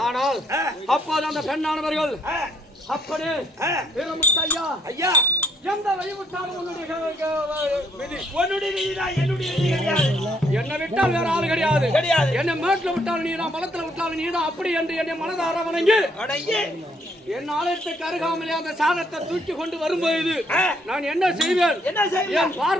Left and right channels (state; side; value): normal; both; correlation 0.69